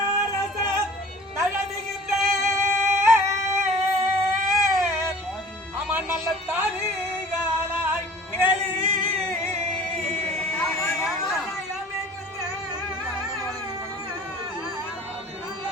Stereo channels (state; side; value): normal; both; correlation 0.46